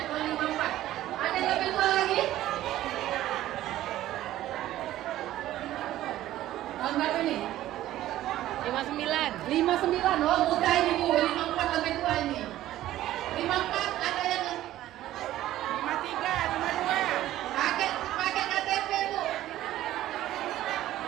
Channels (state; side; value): quieter; left; 14.1 dB